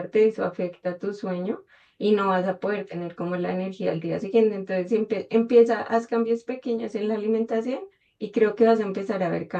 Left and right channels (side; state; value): both; identical; correlation 1.00